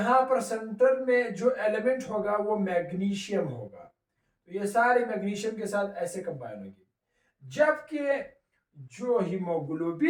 पर सेंटर में जो एलिमेंट होगा वो मैग्नीशियम होगा, तो ये सारे मैग्नीशियम के साथ ऐसे कंबाइन होंगे। जबकि जो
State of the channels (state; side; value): identical; both; correlation 1.00